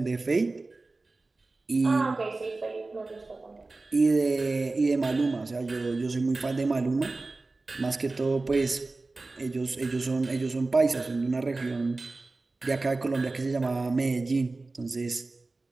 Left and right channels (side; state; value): left; quieter; 3.4 dB